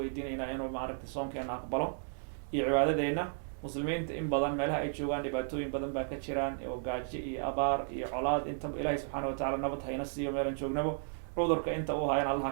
inuu maaragtay soonkeena aqbalo iyo cibaadadeena. muslimiinta in badan meelaha ay joogaan dhibaatooyin badan baa ka jiraan, oo gaajo iyo abaar iyo colaad. intaba ilaahay subxaanahu watacaala nabad hayna siiyo meelan joognabo. cudurka inta uu hayan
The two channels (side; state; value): left; silent; digital silence